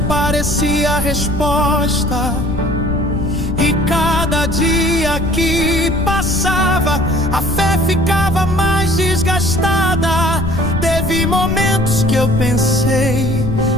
parecia a resposta. E cada dia que passava, a fé ficava mais desgastada. Teve momentos que eu pensei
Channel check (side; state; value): left; noise; rumble, 5 dB below the sound